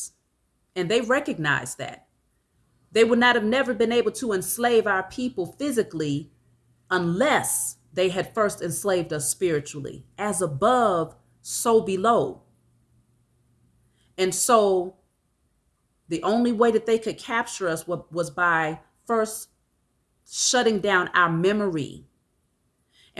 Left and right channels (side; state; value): both; identical; correlation 1.00